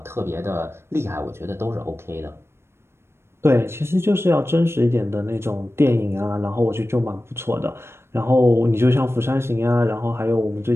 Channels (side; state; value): left; late; 0.12 ms